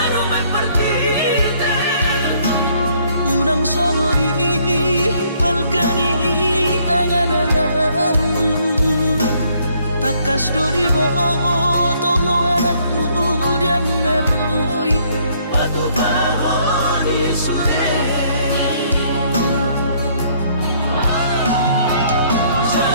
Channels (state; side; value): inverted; both; correlation -0.65